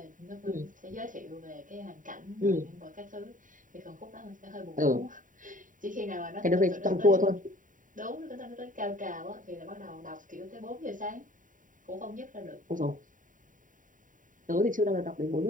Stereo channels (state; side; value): late; left; 0.38 ms